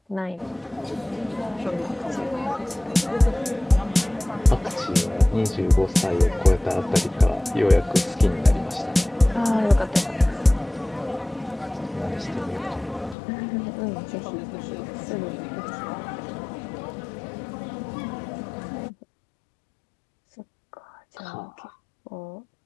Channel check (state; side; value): drops out; right; at 13.2 s